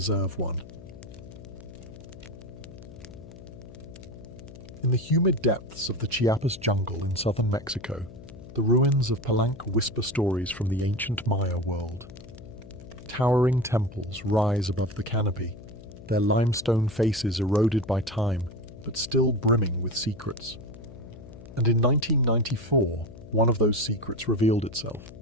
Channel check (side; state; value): left; noise; hum, 16 dB below the sound